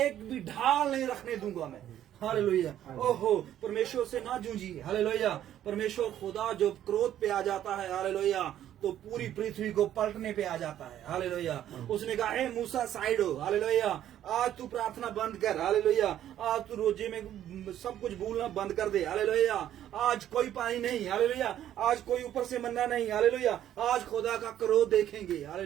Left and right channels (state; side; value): quieter; left; 11.5 dB